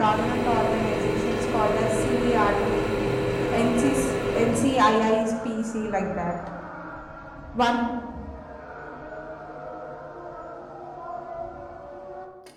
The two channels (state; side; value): identical; both; correlation 1.00